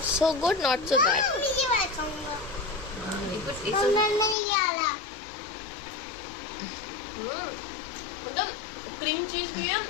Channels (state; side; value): drops out; right; at 4.4 s